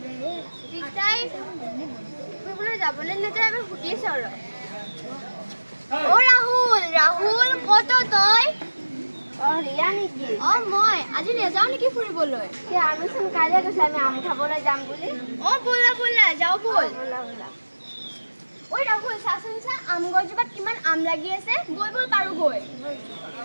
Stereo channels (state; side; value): inverted; both; correlation -1.00